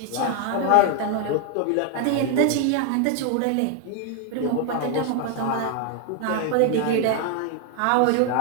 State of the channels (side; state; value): both; different; correlation 0.00